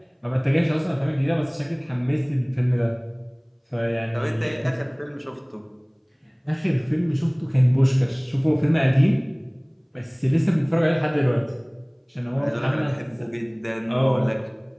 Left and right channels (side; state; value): both; identical; correlation 1.00